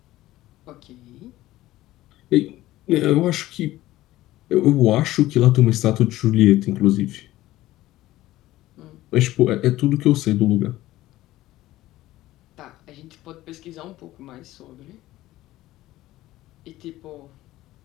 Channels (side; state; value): right; quieter; 16.1 dB